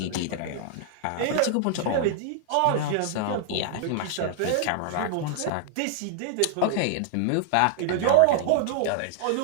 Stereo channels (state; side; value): different; both; correlation -0.01